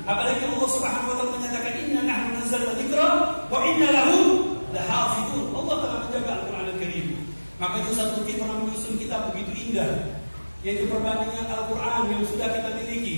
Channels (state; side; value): inverted; both; correlation -1.00